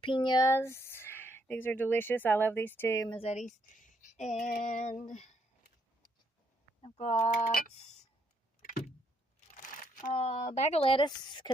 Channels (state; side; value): normal; both; correlation 0.73